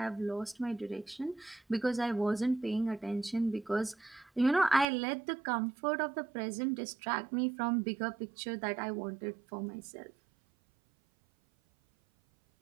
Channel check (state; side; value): drops out; left; at 4.9 s